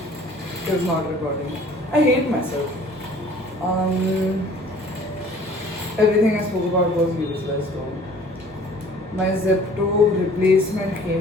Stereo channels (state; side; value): normal; both; correlation 0.51